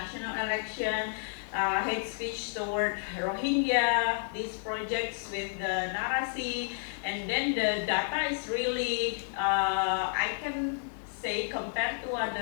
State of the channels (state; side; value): silent; right; digital silence